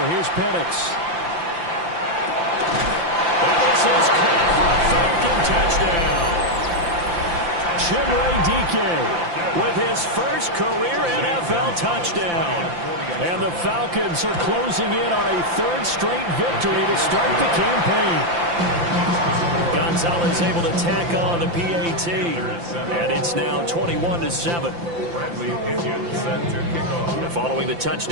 Here's Penix. And this is caught for a Falcon touchdown. Chimere Dike with his first career NFL touchdown. And the Falcons are closing in on a 3rd straight victory to start the campaign. Saleh's able to tack on the PAT. And it's now 21-7. Bradley Pinion set to kick off. And following the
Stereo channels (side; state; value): left; late; 5.8 ms